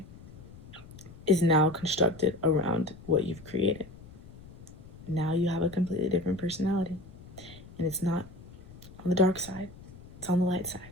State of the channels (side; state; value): left; noise; rumble, 19 dB below the sound